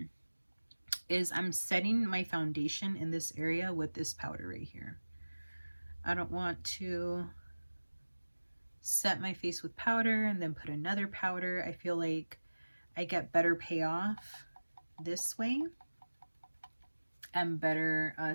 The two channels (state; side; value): inverted; both; correlation -1.00